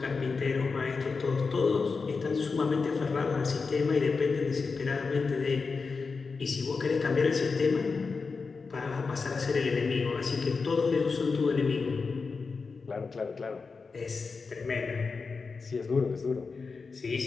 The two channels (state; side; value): quieter; right; 4.6 dB